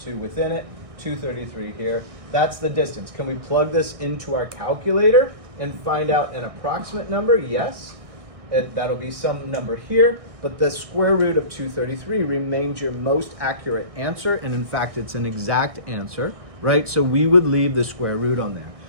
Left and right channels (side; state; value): left; late; 1.6 ms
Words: within it, 233 here. That's the distance. Can we plug this into our calculator and find out an approximate number? Yes. That'll be some number here, but the square root of 233 remains your most accurate answer, and in fact, it's an exact answer. Right? So we would leave the square root on there.